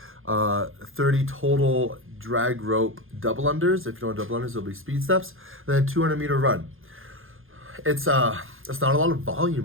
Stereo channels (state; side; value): late; left; 0.60 ms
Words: 30 total drag rope double unders. If you don't double unders, it'll be speed steps. And then 200-meter run. It's not a lot of